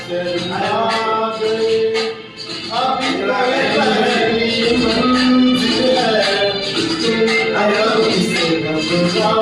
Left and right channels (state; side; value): identical; both; correlation 1.00